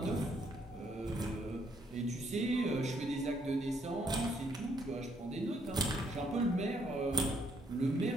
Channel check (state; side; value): normal; both; correlation 0.70